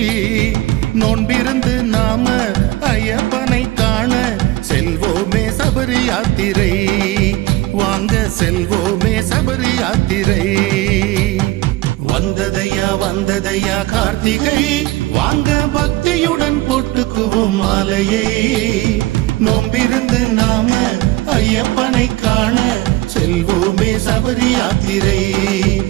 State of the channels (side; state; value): left; quieter; 18.4 dB